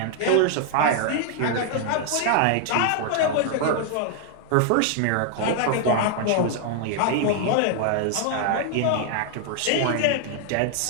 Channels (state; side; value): different; both; correlation 0.00